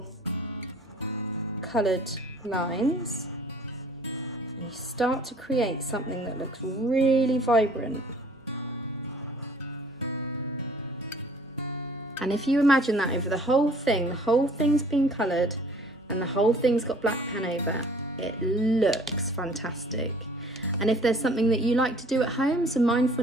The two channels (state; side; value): normal; both; correlation 0.54